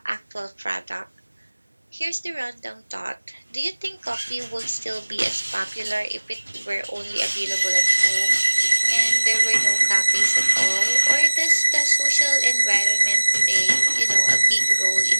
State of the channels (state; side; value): inverted; both; correlation -1.00